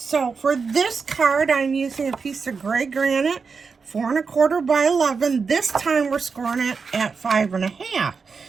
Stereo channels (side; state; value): left; quieter; 5.2 dB